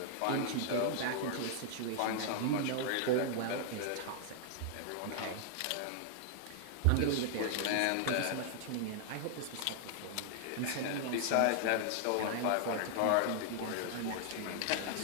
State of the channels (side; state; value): both; different; correlation -0.01